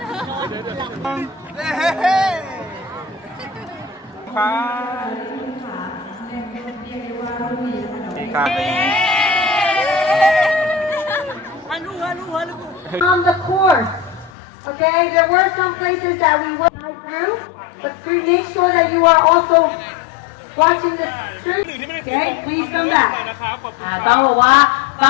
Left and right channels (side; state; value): right; drops out; at 14.3 s